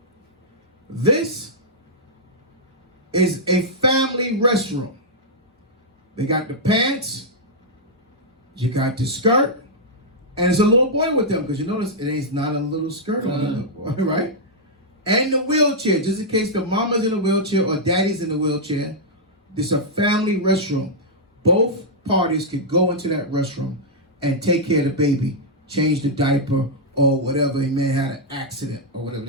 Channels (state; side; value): normal; both; correlation -0.07